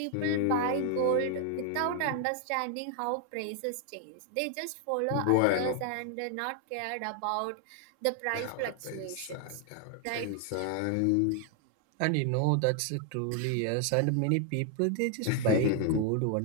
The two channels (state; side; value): different; both; correlation 0.00